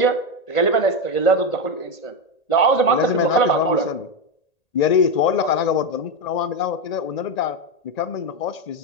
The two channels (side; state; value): right; late; 1.8 ms